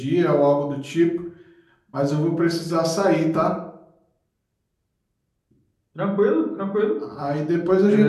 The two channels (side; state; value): both; identical; correlation 1.00